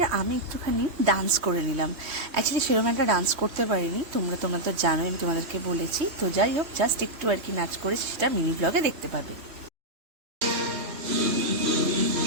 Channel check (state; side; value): late; left; 3.2 ms